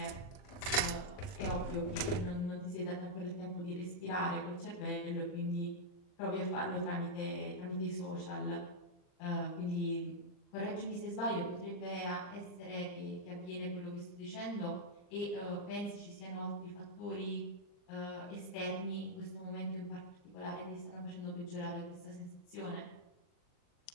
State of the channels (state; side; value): late; right; 39 ms